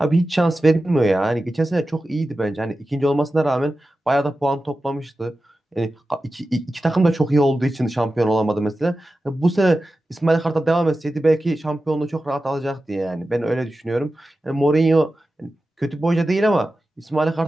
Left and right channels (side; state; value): both; normal; correlation 0.93